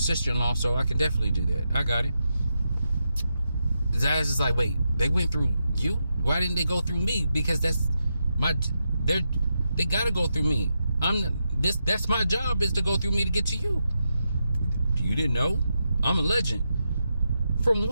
so I can definitely do that. I got it. Zaz is like, wait, they went through you? Why didn't they go through me? Because they got to go through me. That's my job, is to go through me to get to you. You didn't know? I'm a legend. From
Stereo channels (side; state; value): both; inverted; correlation -0.86